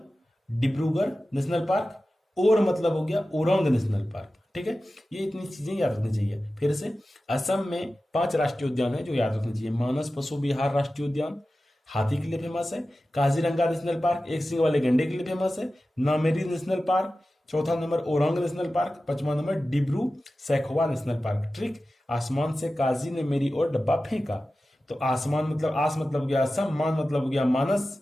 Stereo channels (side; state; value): both; normal; correlation 0.94